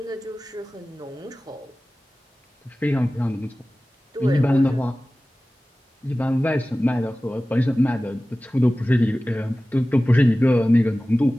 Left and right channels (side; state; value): both; normal; correlation 0.97